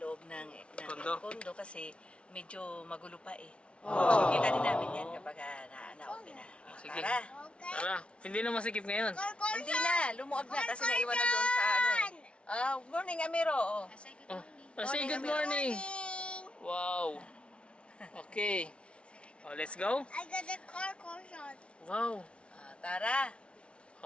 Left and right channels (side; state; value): right; late; 0.059 ms